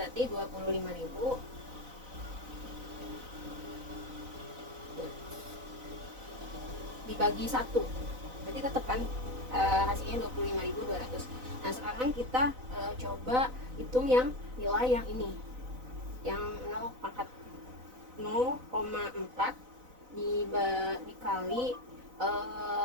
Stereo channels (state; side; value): late; left; 4.0 ms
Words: 25.000 dibagi 1, berarti tetap kan hasilnya 25.200. Nah, sekarang kita coba hitung yang nilai yang ini, yang 0,4 dikali